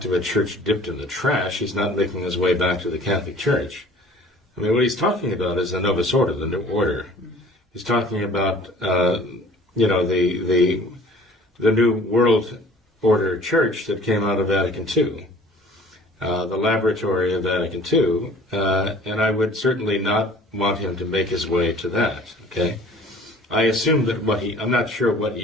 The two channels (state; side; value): normal; both; correlation 0.49